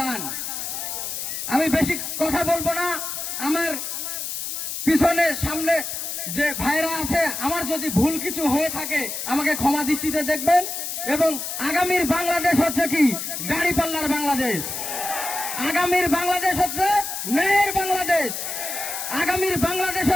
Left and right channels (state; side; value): noise; left; hiss, 5 dB below the sound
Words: আমি বেশি কথা বলবো না। আমার পিছনে সামনে যে ভাইরা আছে, আমার যদি ভুল কিছু হয়ে থাকে আমাকে ক্ষমা দৃষ্টিতে দেখবেন। এবং আগামীর বাংলাদেশ হচ্ছে কি? দাঁড়িপাল্লার বাংলাদেশ। আগামীর বাংলাদেশ হচ্ছে ন্যায়ের বাংলাদেশ। আগামীর বাংলাদেশ